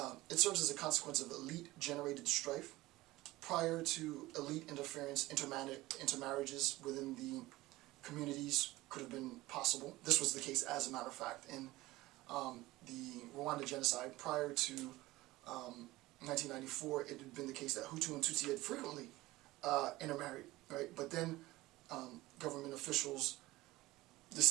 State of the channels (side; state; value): left; quieter; 18.6 dB